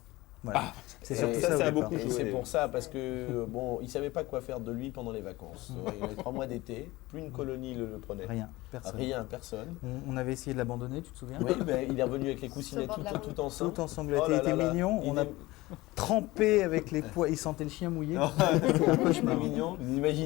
Voilà. C'est Et surtout ça, ça, ça a au départ. beaucoup Et joué. c'est pour ça, parce que bon, il savait pas quoi faire de lui pendant les vacances. Il avait 3 mois d'été, plus une colonie le prenait. Rien, personne. Rien, personne. On avait essayé de l'abandonner, tu te souviens? Oui, ben, il est revenu avec les coussinets Sur le bord de la tout ensemble. Tout ensanglanté, Oh il là était là là. mignon. Il On a est- trempé avec les poids. Il sentait le chien mouillé. C'était un cauchemar mignon. Vous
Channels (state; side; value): quieter; right; 19.7 dB